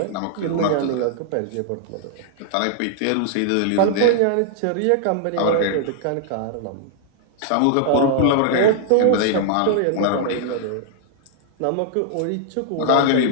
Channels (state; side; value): different; both; correlation -0.01